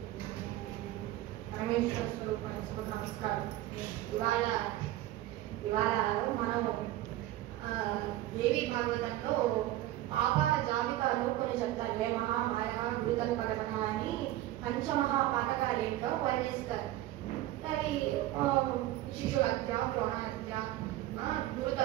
परमेश्वर स्वरूपाనికి శుభ నమస్కారం. ఇవాళ మనం దేవి భాగవతంలో పాపాల జాబితాలో కొన్ని చెప్తారు. వేమహ మాయ గురుతల్పగమన అని పంచమహాపాతకాలేంటో వర్ణిస్తారు. అవి శిశు హత్య, ద్రోణ హత్య,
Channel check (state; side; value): quieter; left; 15.0 dB